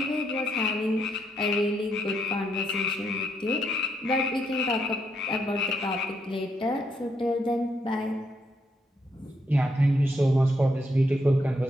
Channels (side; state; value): both; normal; correlation 0.77